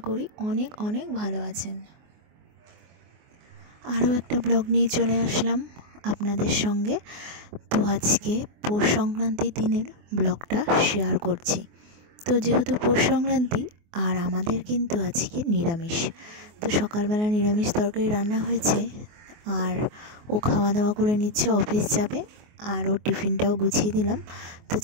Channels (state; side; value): late; left; 24 ms